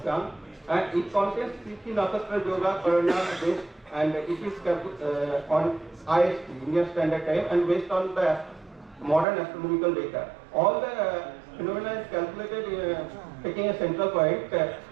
and it contains Tithi Nakshatra Yoga Karana based, and it is on IST, Indian Standard Time, and based on the modern astronomical data. All the phenomena is calculated taking a central point,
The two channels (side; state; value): left; drops out; at 9.2 s